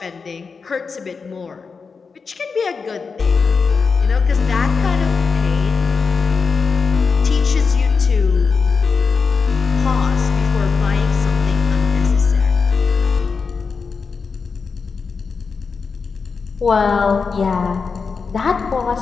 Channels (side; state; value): right; quieter; 5.1 dB